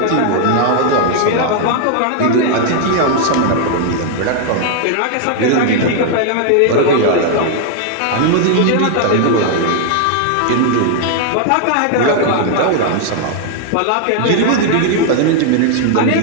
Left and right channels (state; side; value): different; both; correlation 0.00